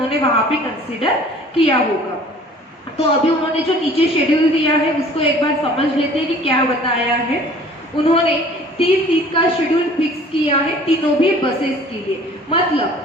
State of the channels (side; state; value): both; normal; correlation 0.50